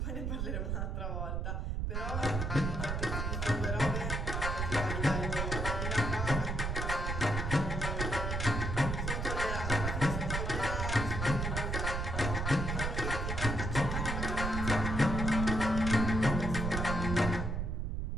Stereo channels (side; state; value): right; noise; rumble, 1 dB below the sound